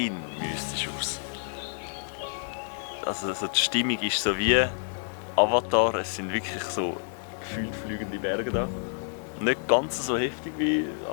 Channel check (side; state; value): right; silent; digital silence